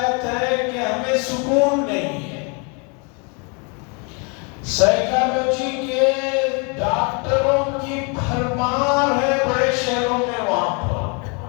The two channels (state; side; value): quieter; right; 34.0 dB